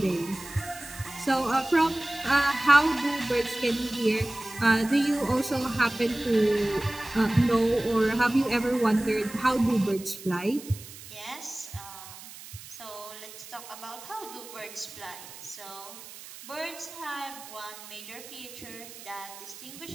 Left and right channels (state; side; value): noise; right; hiss, 15 dB below the sound